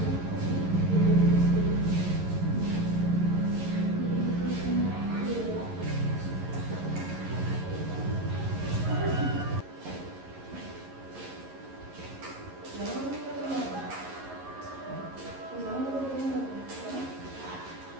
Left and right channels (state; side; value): late; left; 11 ms